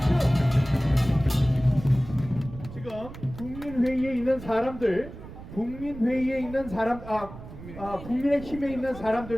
지금 국민회의에 있는 사람들, 국민의힘에 있는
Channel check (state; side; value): noise; right; rumble, 14 dB below the sound